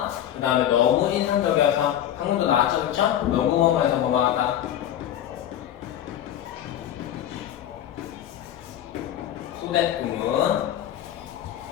그 다음에 너무 인상적이어서 방금도 나왔죠, 그쵸? 너무 뭐뭐해서 뭐뭐하다 소댓구문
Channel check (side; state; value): right; quieter; 11.2 dB